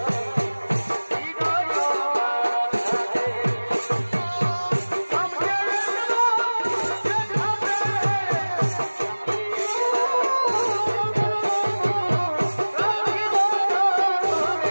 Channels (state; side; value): inverted; both; correlation -1.00